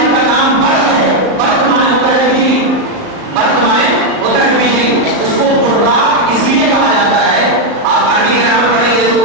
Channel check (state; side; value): late; left; 38 ms